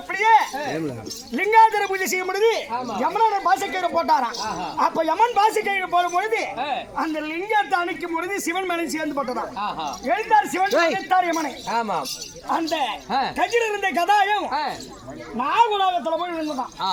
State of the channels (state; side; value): identical; both; correlation 1.00